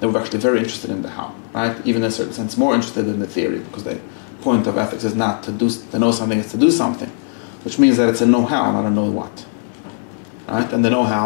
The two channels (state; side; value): silent; right; 62 dB below the other